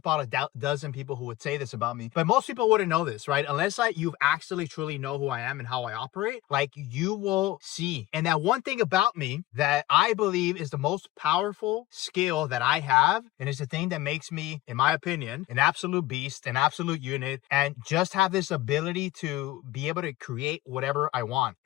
a dozen people who would say this about me, but most people wouldn't know this, right? Unless you've actually truly know who I am and how I operate. Like, you will see. And that one thing about me that I believe is the most powerful skill that I have, and it's the thing that makes me, in my opinion, an absolute beast, an absolute unit, and just have this ability to be able to create whatever I want.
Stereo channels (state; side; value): quieter; right; 16.3 dB